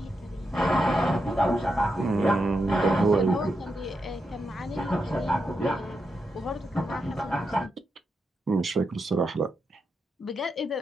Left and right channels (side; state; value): both; normal; correlation 0.85